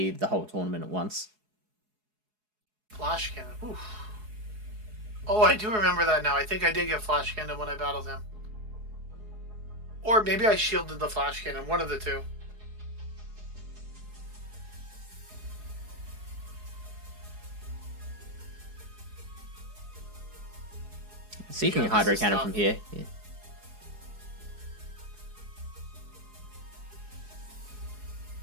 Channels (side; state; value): left; late; 4.7 ms